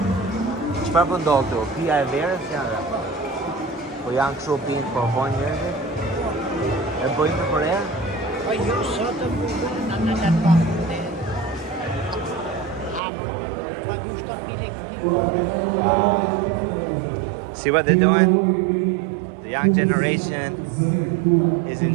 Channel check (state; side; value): drops out; left; at 13.0 s